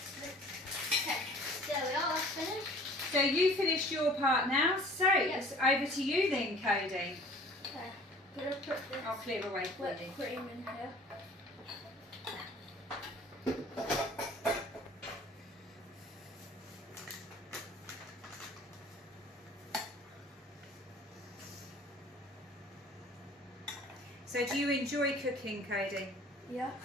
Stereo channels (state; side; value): normal; both; correlation 0.49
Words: Okay, there we are, that's finished. So you finished your part now, so Yep. it's over to you then, Cody. Okay, I'm going to put this I'll clear away for you. whipped cream in here. So do you enjoy cooking, Cody?